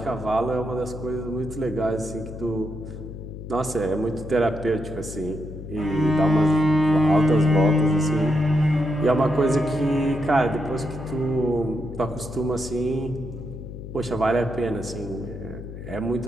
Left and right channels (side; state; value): left; noise; hum, 10 dB below the sound